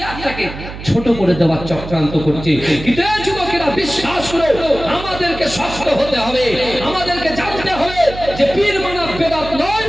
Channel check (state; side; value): noise; right; hum, 11 dB below the sound